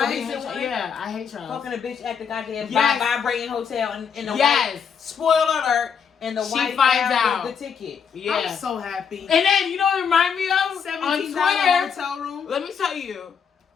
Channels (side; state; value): right; quieter; 6.9 dB